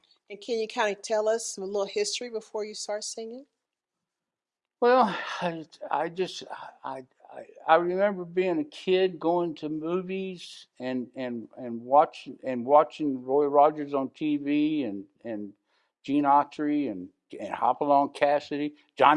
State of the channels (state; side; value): identical; both; correlation 1.00